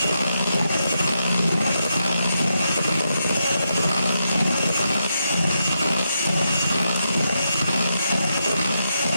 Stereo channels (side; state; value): both; inverted; correlation -0.83